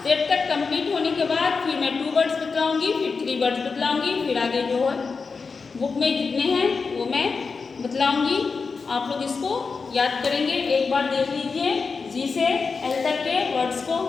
जेड तक कंप्लीट होने के बाद फिर मैं 2 वर्ड्स बतलाऊंगी, फिर 3 वर्ड्स बतलाऊंगी, फिर आगे जो है बुक में जितने हैं वो मैं बतलाऊंगी। आप लोग इसको याद करेंगे। एक बार देख लीजिए जी से एल तक के वर्ड्स को।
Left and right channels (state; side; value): quieter; right; 4.8 dB